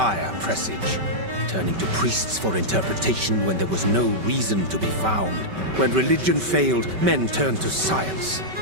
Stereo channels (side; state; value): left; late; 5.2 ms